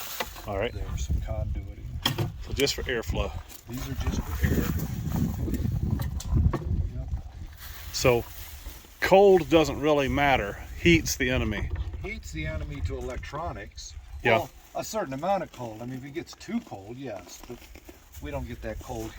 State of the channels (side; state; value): both; identical; correlation 1.00